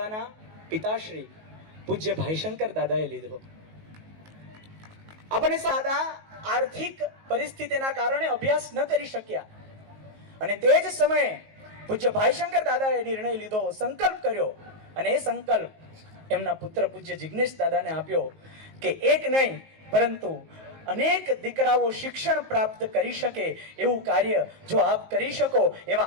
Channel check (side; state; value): left; late; 19 ms